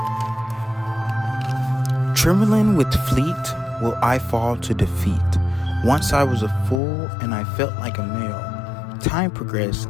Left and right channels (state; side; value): drops out; right; at 6.8 s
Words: Trembling with fleet will I fall to defeat. Once I was a fool and I felt like a male. Time progressed,